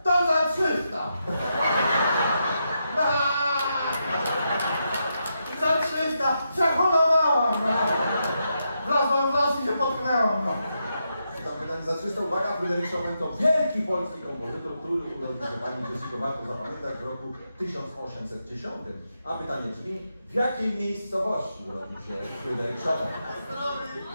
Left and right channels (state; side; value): inverted; both; correlation -0.84